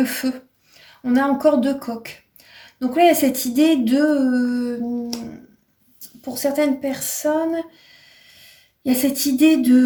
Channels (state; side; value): identical; both; correlation 1.00